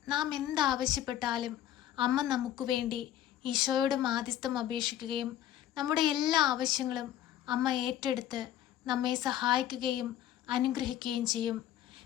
നാം എന്താവശ്യപ്പെട്ടാലും അമ്മ നമുക്ക് വേണ്ടി ഈശോയോട് മാധ്യസ്ഥം അപേക്ഷിക്കുകയും നമ്മുടെ എല്ലാ ആവശ്യങ്ങളും അമ്മ ഏറ്റെടുത്ത് നമ്മെ സഹായിക്കുകയും അനുഗ്രഹിക്കുകയും ചെയ്യും.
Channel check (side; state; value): right; quieter; 11.7 dB